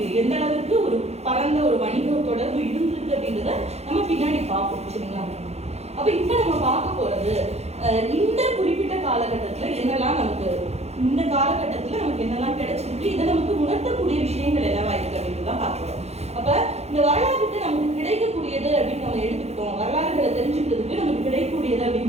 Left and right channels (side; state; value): left; late; 0.31 ms